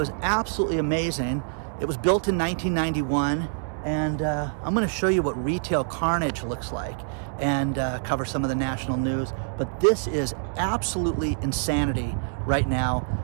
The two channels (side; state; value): left; silent; digital silence